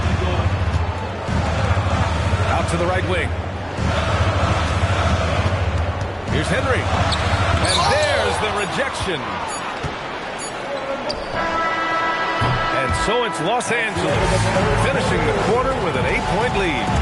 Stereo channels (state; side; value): identical; both; correlation 1.00